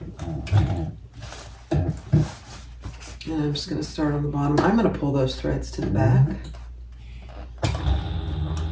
And I'm just going to start on the bottom. I'm going to pull those threads to the back.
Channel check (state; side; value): identical; both; correlation 1.00